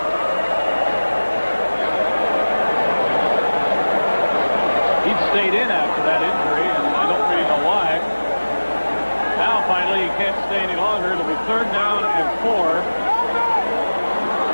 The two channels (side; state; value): both; inverted; correlation -1.00